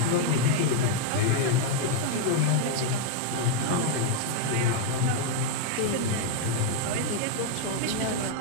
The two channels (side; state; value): both; different; correlation 0.00